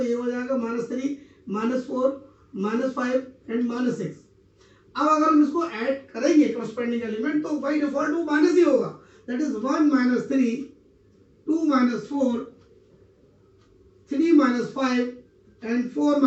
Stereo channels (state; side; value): identical; both; correlation 1.00